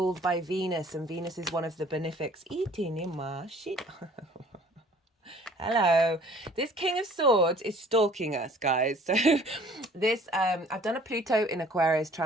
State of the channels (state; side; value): normal; both; correlation 0.53